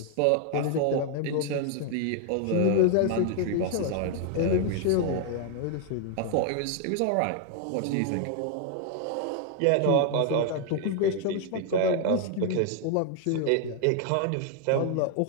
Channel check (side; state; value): both; different; correlation 0.00